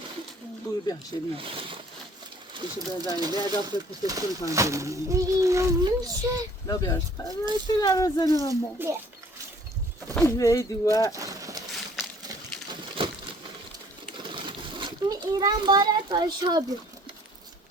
Buyur bir şey mi? İşte ben daha iyi. Ben daha fazla patates koyacağım. اینو منشه Ne yapıyorsun? Ben şöyle arasını ama. Neydi bu? می ایران بارد باشابی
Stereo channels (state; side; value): normal; both; correlation 0.56